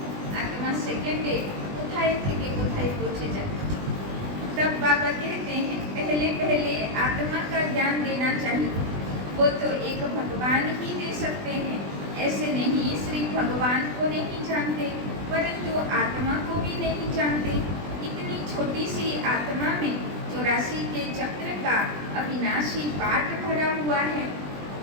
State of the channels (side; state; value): left; late; 20 ms